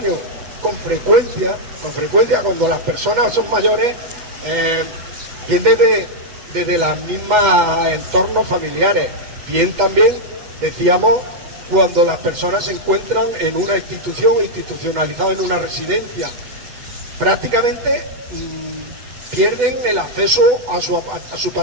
Con frecuencia cuando las personas son mayores, viene desde las mismas entornos familiares. Bien también, decíamos, cuando las personas se encuentran en una institución, institucionalizada en una residencia, prácticamente pierden el acceso a su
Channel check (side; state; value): left; late; 8.1 ms